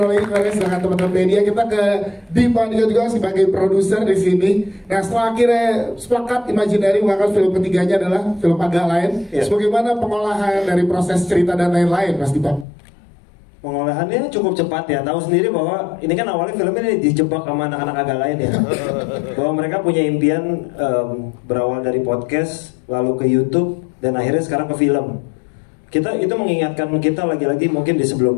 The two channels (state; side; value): drops out; right; at 12.7 s